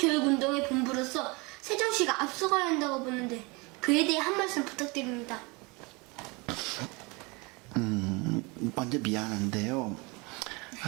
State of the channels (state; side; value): quieter; left; 27.3 dB